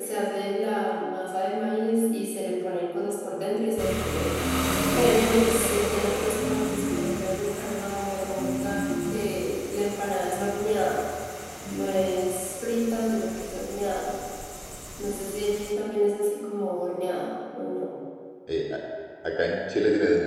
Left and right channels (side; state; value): both; identical; correlation 1.00